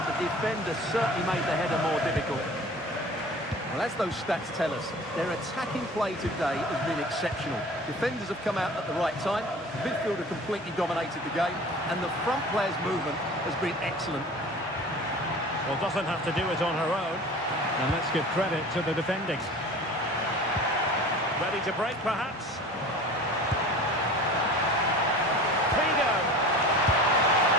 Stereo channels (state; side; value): normal; both; correlation 0.40